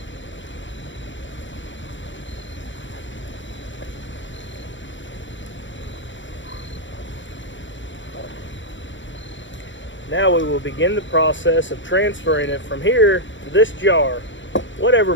Now we will begin the process of transferring it from here to this jar, whatever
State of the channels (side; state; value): right; late; 0.55 ms